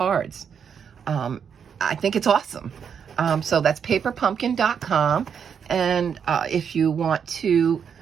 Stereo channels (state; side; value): quieter; left; 7.3 dB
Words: I think it's awesome. So that's paperpumpkin.com. And if you want to